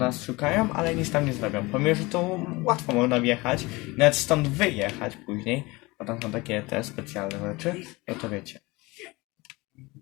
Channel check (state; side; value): quieter; right; 23.1 dB